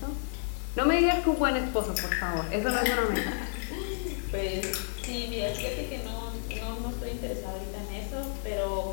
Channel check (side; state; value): right; silent; digital silence